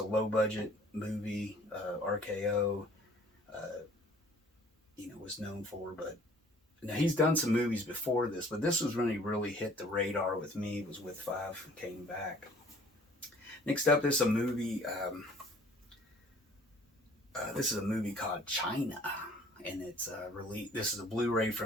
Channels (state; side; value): normal; both; correlation 0.54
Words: low budget movie. RKO, was known for, but now he's done some movies before this, but this was when he really hit the radar with me. It was with Five Came Back. Next up is a movie. This is a movie called China, and it's released. This is a Blu-ray